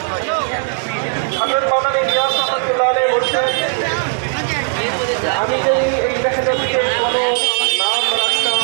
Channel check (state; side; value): silent; left; 59 dB below the other